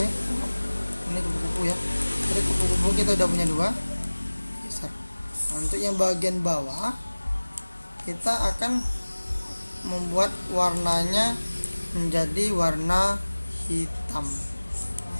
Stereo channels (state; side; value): inverted; both; correlation -1.00